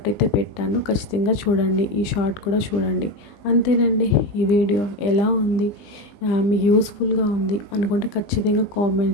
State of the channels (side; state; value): right; late; 20 ms